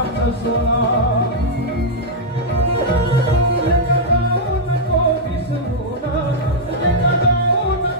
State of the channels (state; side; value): normal; both; correlation -0.05